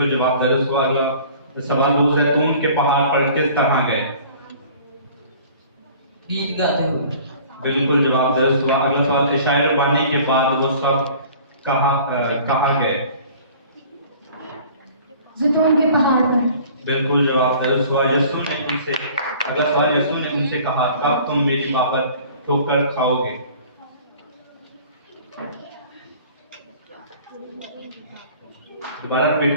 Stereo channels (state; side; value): inverted; both; correlation -0.48